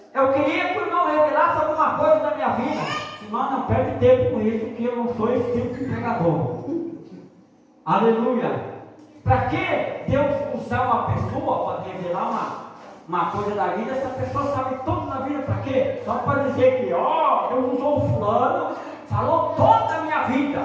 eu queria que o irmão revelasse alguma coisa da minha vida. Irmão, não perde tempo com isso, que eu não sou esse tipo de pregador. Aleluia. Para que Deus usar uma pessoa para revelar uma coisa da vida? Essa pessoa sabe tudo da vida, para quê? Só para dizer que, Deus usou o fulano, falou toda a minha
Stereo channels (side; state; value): both; identical; correlation 1.00